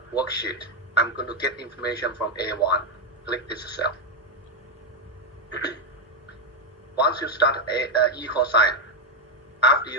worksheet. I'm going to get information from A1. Click this cell. Once you start equal sign, after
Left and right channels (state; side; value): normal; both; correlation 0.04